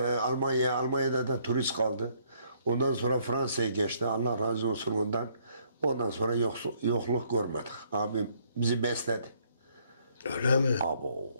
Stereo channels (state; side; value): inverted; both; correlation -0.67